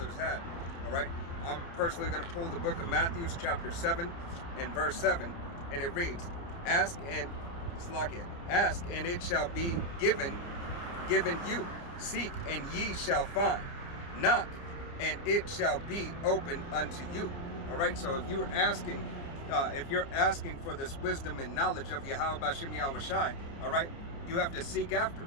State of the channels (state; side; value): late; right; 29 ms